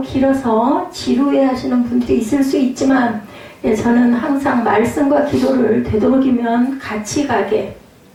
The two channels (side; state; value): both; identical; correlation 1.00